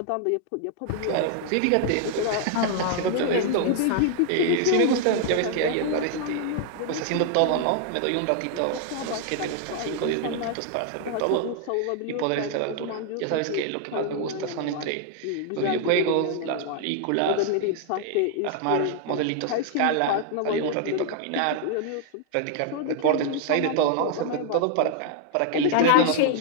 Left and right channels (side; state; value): both; different; correlation 0.00